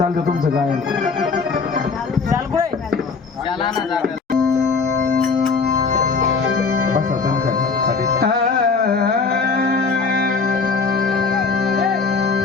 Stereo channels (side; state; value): right; quieter; 4.8 dB